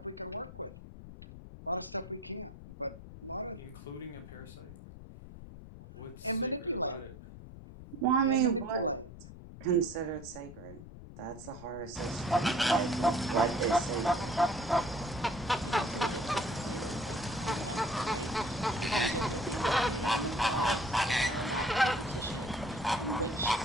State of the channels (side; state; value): left; noise; rumble, 15 dB below the sound